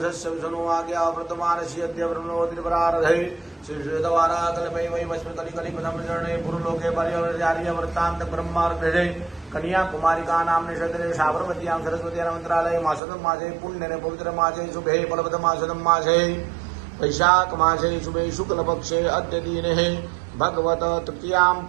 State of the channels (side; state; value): left; drops out; at 13.0 s